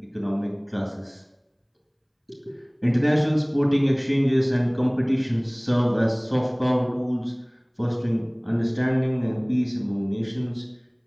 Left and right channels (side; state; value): both; identical; correlation 1.00